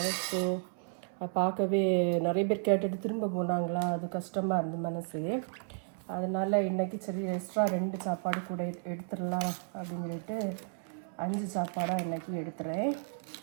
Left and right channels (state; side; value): silent; left; 56 dB below the other